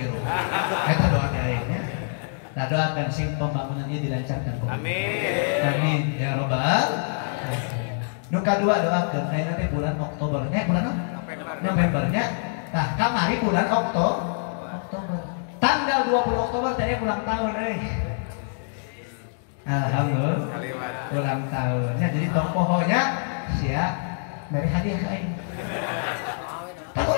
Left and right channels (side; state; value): right; silent; digital silence